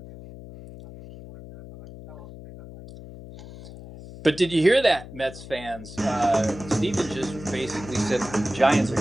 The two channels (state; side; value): noise; left; hum, 15 dB below the sound